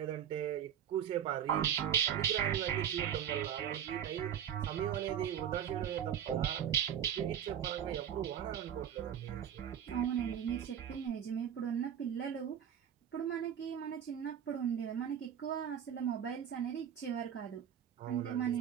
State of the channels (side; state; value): left; quieter; 9.2 dB